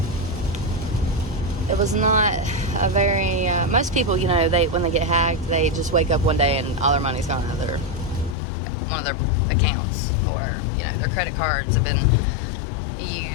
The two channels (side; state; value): right; drops out; at 8.3 s